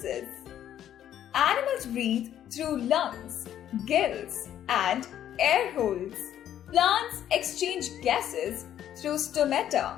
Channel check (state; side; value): quieter; right; 10.8 dB